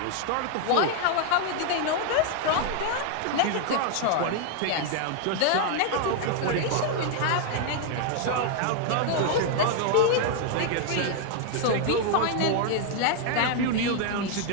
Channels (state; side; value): different; both; correlation 0.00